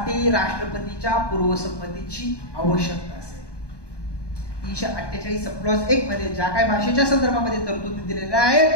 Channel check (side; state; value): right; late; 1.2 ms